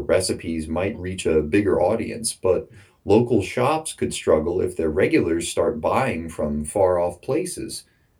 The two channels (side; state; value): both; identical; correlation 1.00